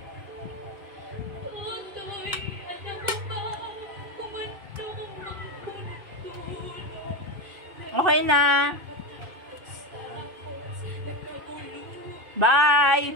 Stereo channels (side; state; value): left; late; 2.5 ms